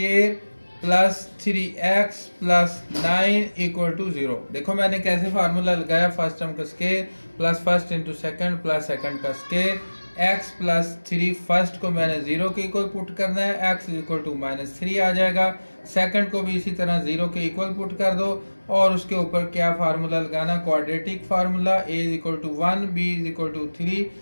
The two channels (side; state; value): both; inverted; correlation -1.00